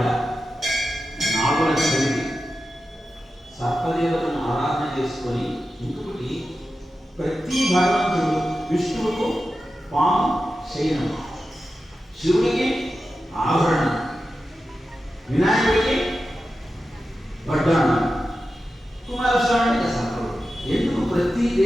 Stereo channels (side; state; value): both; normal; correlation 0.92